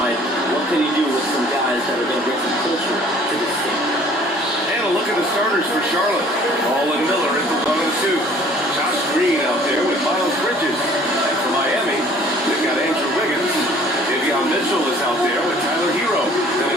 What can he do with some guys that are going to bring some culture to this team? And a look at the starters for Charlotte. Paul and Miller in the 1 and 2. Josh Green out there with Miles Bridges. And for Miami, they've got Andrew Wiggins. Davion Mitchell is out there with Tyler Hero. Then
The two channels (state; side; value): normal; both; correlation 0.54